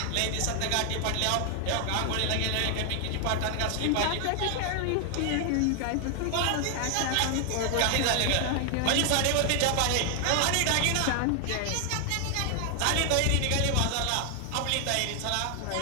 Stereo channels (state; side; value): different; both; correlation 0.00